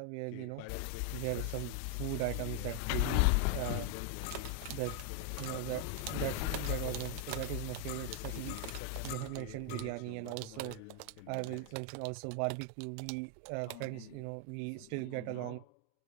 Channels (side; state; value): both; different; correlation 0.00